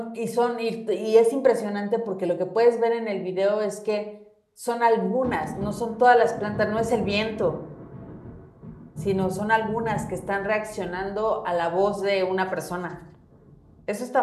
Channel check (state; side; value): identical; both; correlation 1.00